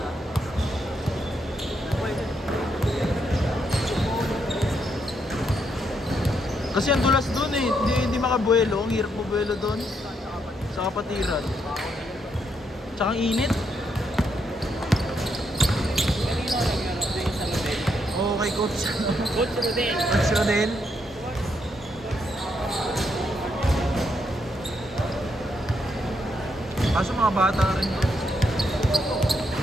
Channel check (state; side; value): normal; both; correlation 0.77